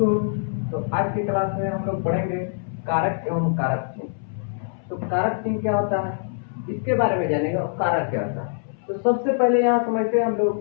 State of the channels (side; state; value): right; silent; 63 dB below the other